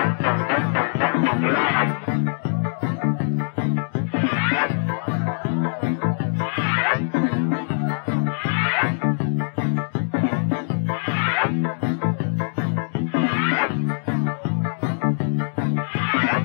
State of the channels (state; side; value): silent; right; digital silence